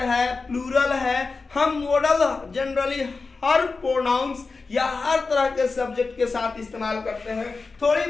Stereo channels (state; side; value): quieter; right; 4.1 dB